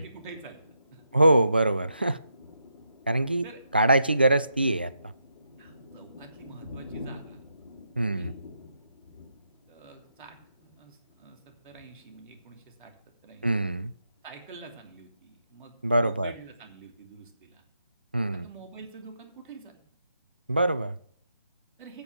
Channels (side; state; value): both; inverted; correlation -0.82